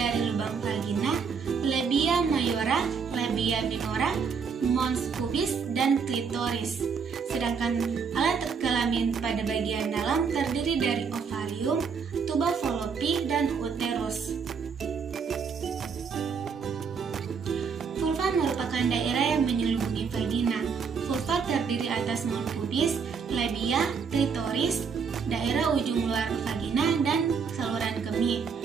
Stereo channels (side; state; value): left; quieter; 5.9 dB